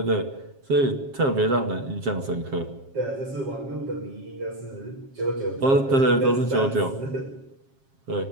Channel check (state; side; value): late; left; 7.4 ms